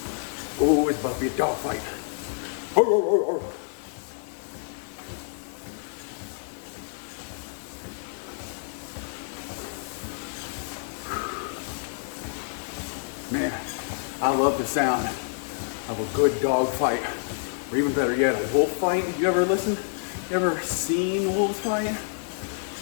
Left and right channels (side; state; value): right; silent; digital silence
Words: Oh, it's about to be a dogfight. Man, I love the sound of a good dog fight. Or even better yet, a wolf fight. You ever listen? You ever seen wolves fight?